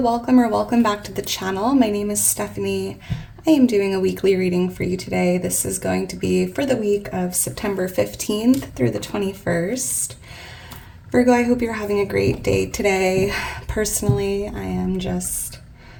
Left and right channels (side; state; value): both; identical; correlation 1.00